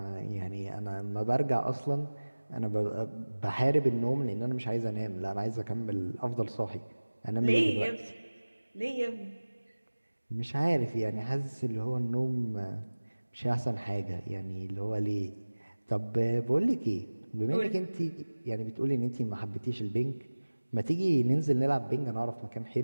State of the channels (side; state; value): both; inverted; correlation -1.00